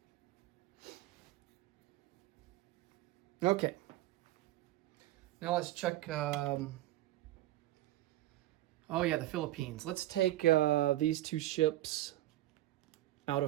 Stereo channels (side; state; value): left; quieter; 15.7 dB